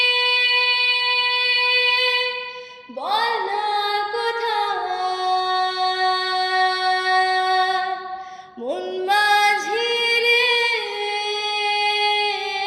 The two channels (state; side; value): identical; both; correlation 1.00